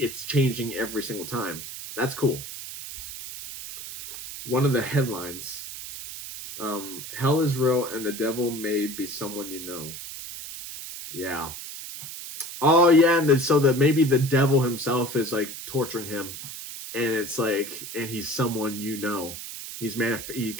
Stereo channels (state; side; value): noise; right; hiss, 10 dB below the sound